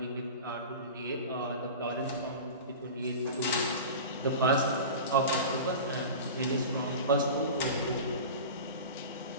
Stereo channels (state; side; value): inverted; both; correlation -0.32